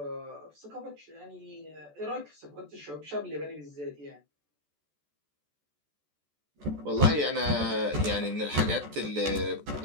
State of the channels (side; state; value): left; late; 14 ms